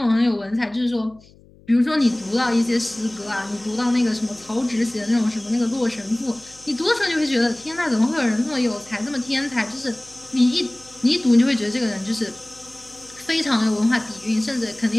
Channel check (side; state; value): left; noise; hum, 26 dB below the sound